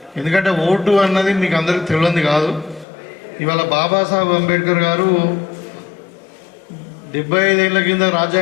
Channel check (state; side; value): drops out; right; at 2.9 s